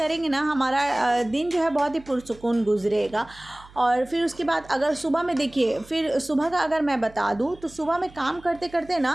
ना, हमारा दिन जो है बहुत ही पुरसुकून गुजरेगा। और फिर उसके बाद अगर सुबह में देखिए, फिर सुबह का अगर मैं बता दूं, तो सुबह में काम करते करते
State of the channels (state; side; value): noise; right; hum, 23 dB below the sound